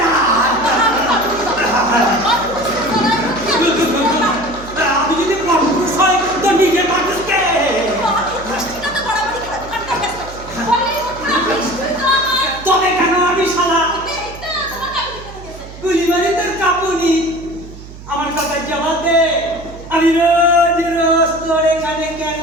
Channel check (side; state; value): right; noise; hum, 16 dB below the sound